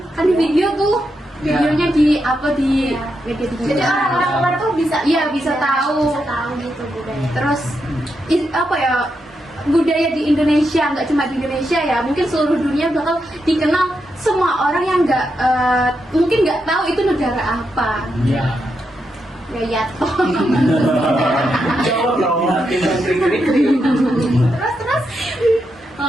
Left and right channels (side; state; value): both; normal; correlation 0.84